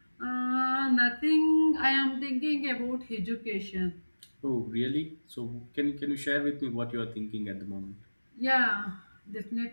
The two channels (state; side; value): inverted; both; correlation -1.00